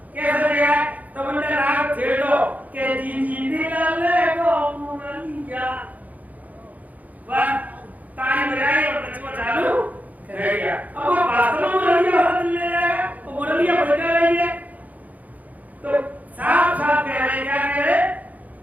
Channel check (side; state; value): left; late; 0.077 ms